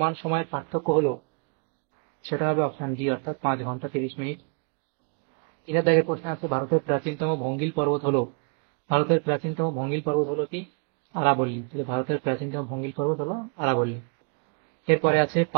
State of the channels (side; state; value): left; quieter; 38.1 dB